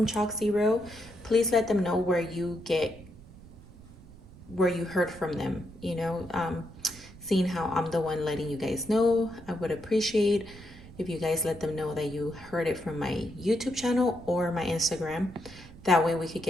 Chalk Zero, please let them know where you heard from them. Seeing how I'm the one letting you guys know, I would appreciate if you guys let them know that you heard it from my YouTube channel or my Instagram. That way we could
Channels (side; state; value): right; noise; rumble, 20 dB below the sound